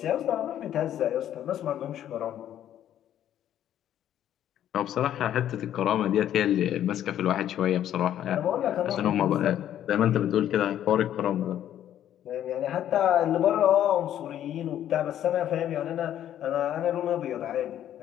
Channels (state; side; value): quieter; right; 11.1 dB